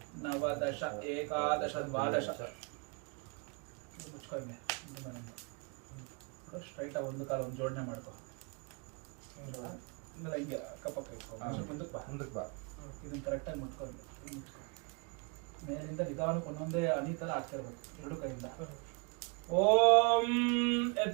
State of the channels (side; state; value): left; quieter; 32.1 dB